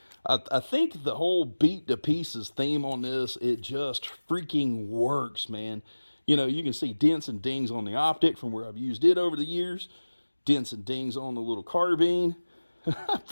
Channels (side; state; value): both; inverted; correlation -1.00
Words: I think the whole beat to pieces theme on this, it just freaking works, man. You know, you can see dents and dings on the optic from where I've used it over the years. Dents and dings on the little carbine. I